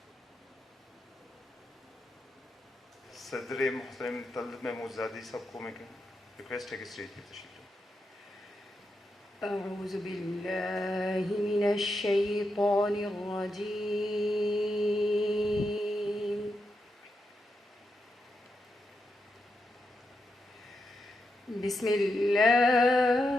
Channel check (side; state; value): both; normal; correlation 0.85